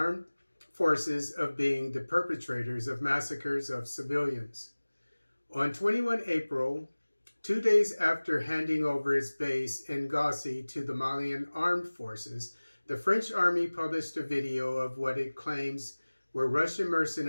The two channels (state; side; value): inverted; both; correlation -1.00